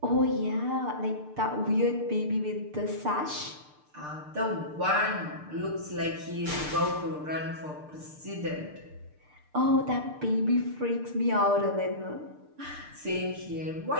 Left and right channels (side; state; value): left; late; 6.7 ms